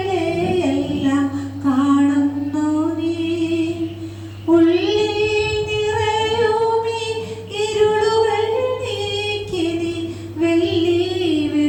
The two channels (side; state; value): both; identical; correlation 1.00